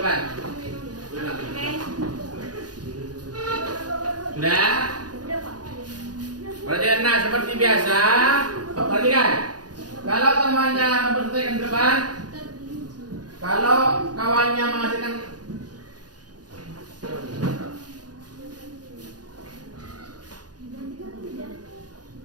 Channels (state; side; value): late; left; 0.69 ms